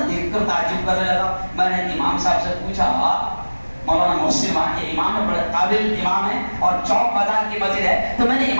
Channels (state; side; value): inverted; both; correlation -1.00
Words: دیکھ کر تعجب کرنے لگا. میں نے امام صاحب سے پوچھا, مولانا محسن وہاں کے امام ہے, بڑے قابل امام ہے اور چوک بازار کی مسجد ہے. تو میں نے